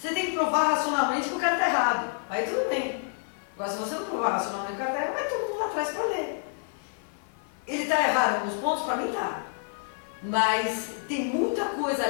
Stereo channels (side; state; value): right; silent; 55 dB below the other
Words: tem que provar racionalmente que o cara está errado. Aí tudo bem. Agora, se você não provar racionalmente que o cara está errado, vai todo mundo lá atrás para ler. Ele está errado em alguns pontos? Para mim está. mas tem muita coisa